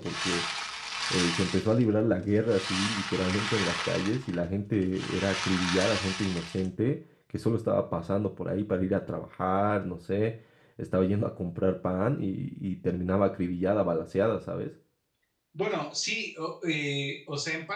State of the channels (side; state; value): both; identical; correlation 1.00